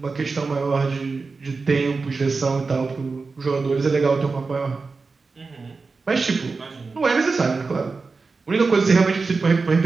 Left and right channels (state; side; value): quieter; left; 4.3 dB